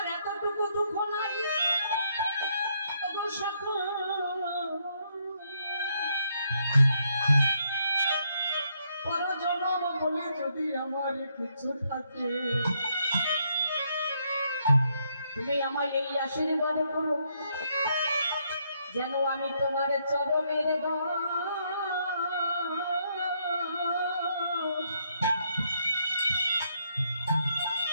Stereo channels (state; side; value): inverted; both; correlation -0.74